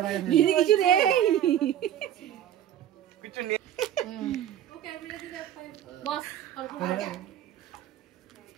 দিদি কিছু নেই, কিছু নেই। ওকে বিলে দিতে বস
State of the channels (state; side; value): quieter; left; 10.9 dB